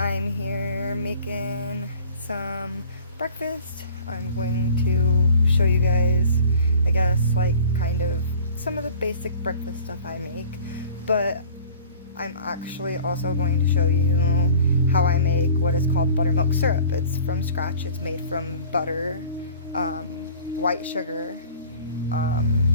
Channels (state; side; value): inverted; both; correlation -0.46